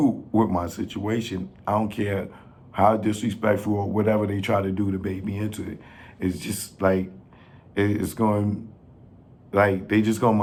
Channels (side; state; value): both; identical; correlation 1.00